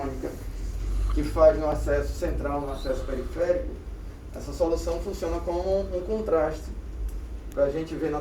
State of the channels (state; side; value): identical; both; correlation 1.00